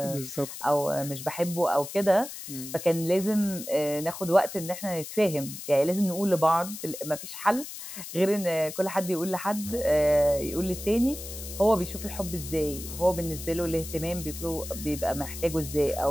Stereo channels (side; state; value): left; noise; hiss, 10 dB below the sound